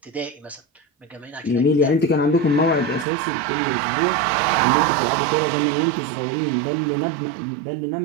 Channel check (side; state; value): left; drops out; at 3.1 s